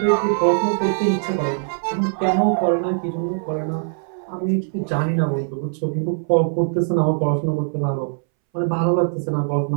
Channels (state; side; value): silent; left; 63 dB below the other